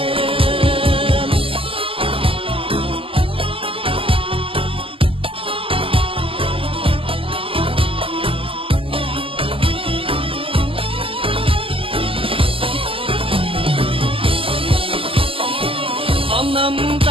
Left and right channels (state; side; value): late; left; 0.26 ms